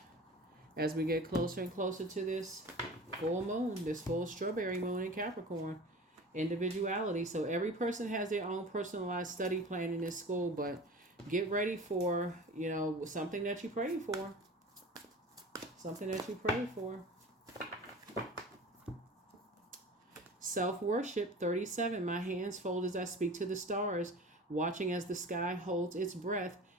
As we get closer and closer to this full moon, this full strawberry moon in Capricorn, individuality. So every person has their own personalized study plan in this school, but get ready for, something that you pray for. Something that you pray for. Self-worship, 37. My hands fold as I speak to the stars, watching as the sky holds its breath.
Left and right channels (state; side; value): normal; both; correlation 0.38